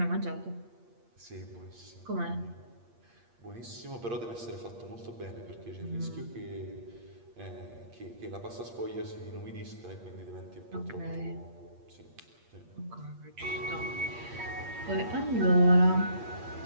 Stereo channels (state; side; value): late; left; 8.5 ms